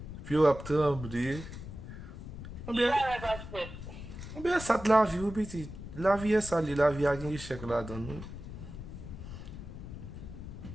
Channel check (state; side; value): noise; left; rumble, 10 dB below the sound